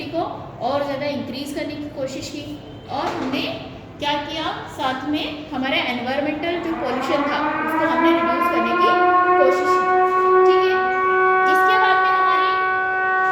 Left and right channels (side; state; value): both; identical; correlation 1.00